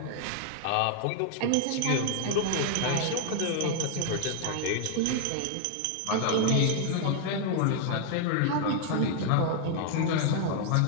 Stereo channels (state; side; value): different; both; correlation 0.00